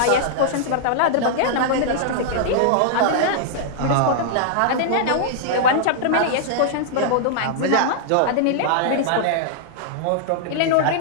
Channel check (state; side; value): different; both; correlation -0.01